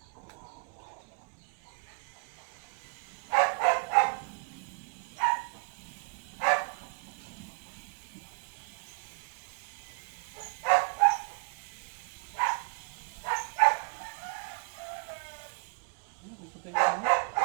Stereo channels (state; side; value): quieter; left; 37.2 dB